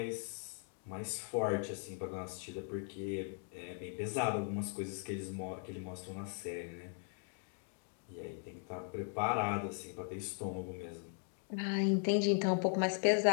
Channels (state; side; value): silent; right; 52 dB below the other